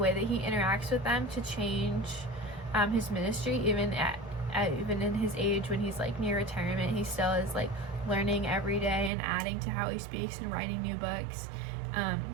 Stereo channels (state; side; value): drops out; left; at 9.1 s